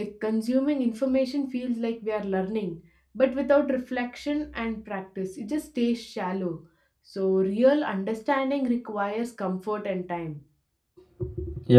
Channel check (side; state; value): both; identical; correlation 1.00